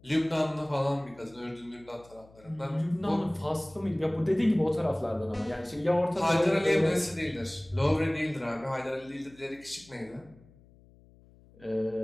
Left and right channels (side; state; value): left; noise; hum, 26 dB below the sound